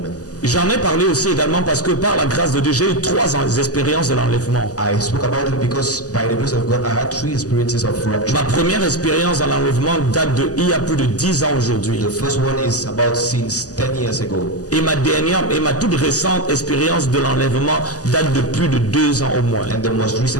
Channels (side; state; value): right; late; 0.67 ms